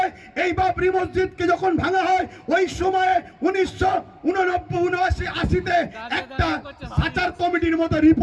এই বাবরি মসজিদকে যখন ভাঙা হয়, ওই সময়ে 1989-80-তে একটা সাচার কমিটির মতো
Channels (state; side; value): identical; both; correlation 1.00